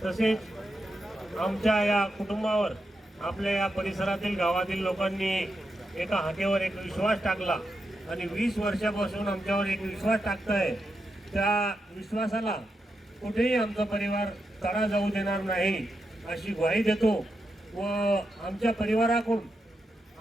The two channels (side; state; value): both; normal; correlation 0.86